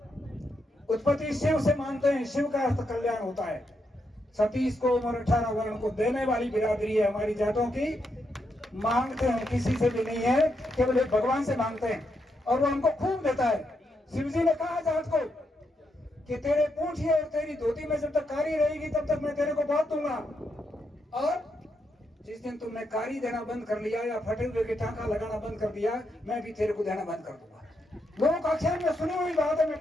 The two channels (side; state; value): both; normal; correlation 0.81